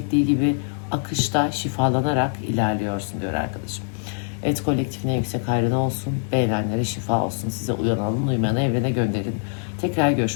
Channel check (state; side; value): silent; right; 63 dB below the other